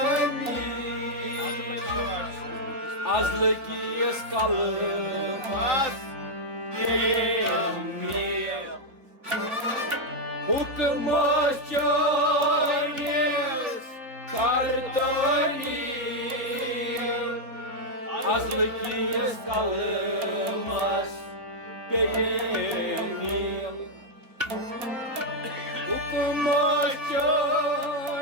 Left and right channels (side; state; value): left; late; 4.3 ms